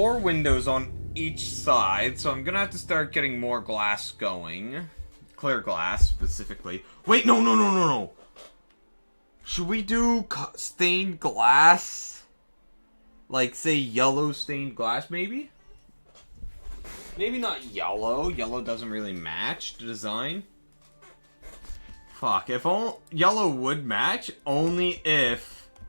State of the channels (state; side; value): inverted; both; correlation -1.00